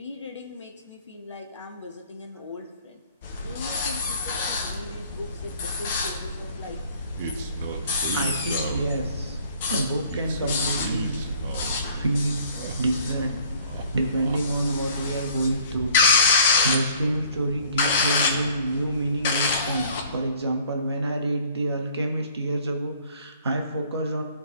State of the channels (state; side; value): inverted; both; correlation -0.56